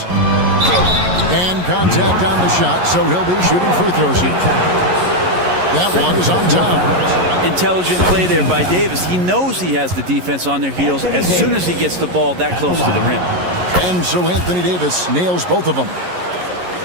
And contact on the shot, so he'll be shooting free throws here. That one is on Towns. Intelligent play there by Davis. He knows he has the defense on their heels as soon as he gets the ball that close to the rim. And so Anthony Davis nails both of them.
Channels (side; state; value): left; late; 11 ms